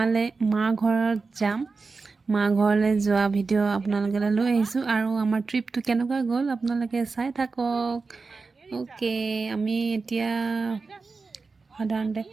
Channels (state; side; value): quieter; left; 4.2 dB